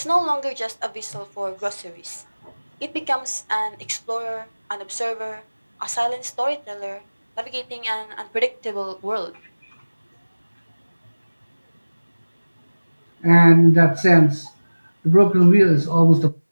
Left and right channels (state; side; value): inverted; both; correlation -1.00